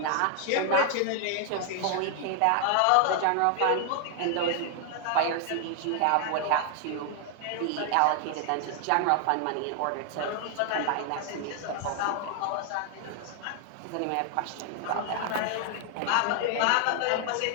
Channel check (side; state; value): both; different; correlation 0.00